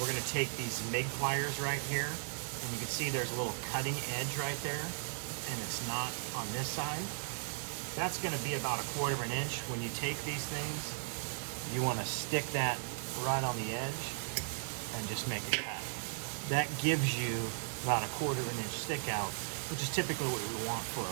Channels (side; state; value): left; silent; digital silence